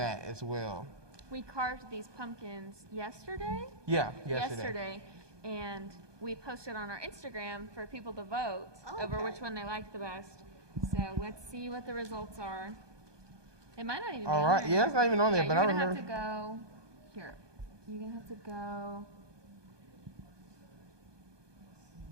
as well. We carved these pumpkins yesterday. Yeah, yesterday. And we posted on our Instagram for people to vote over which one they liked the best. So let's see what the results are. It might not even be All on right, there. yeah, it's not even on there, but I You're remember. gonna have to go here. You're gonna have to go.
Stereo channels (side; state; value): left; late; 1.2 ms